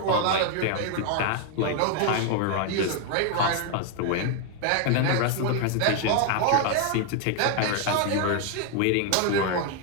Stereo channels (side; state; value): both; different; correlation 0.00